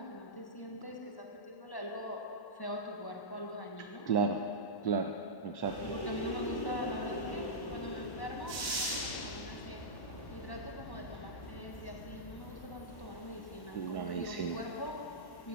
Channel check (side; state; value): right; late; 1.1 ms